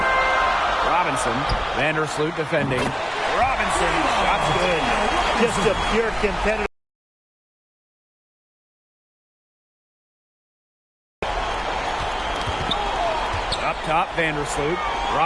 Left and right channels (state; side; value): identical; both; correlation 1.00